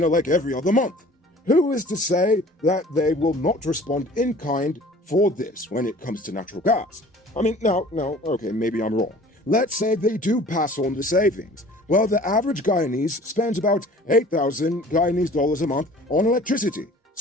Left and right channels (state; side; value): normal; both; correlation 0.48